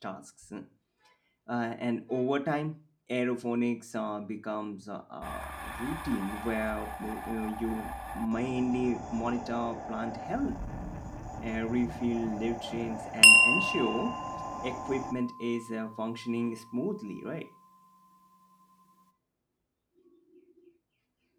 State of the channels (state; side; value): identical; both; correlation 1.00